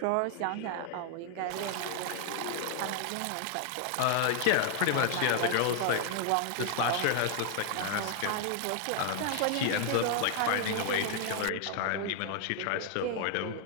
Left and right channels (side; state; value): both; different; correlation 0.00